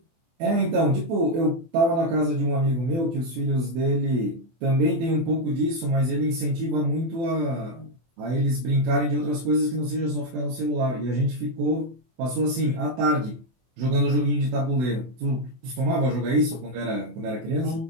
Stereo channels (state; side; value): late; left; 24 ms